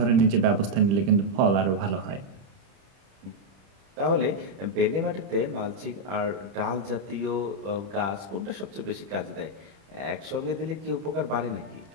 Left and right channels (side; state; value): left; late; 30 ms